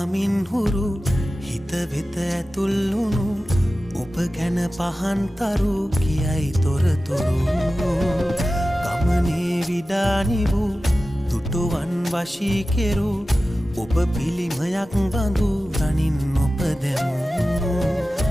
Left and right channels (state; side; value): normal; both; correlation 0.95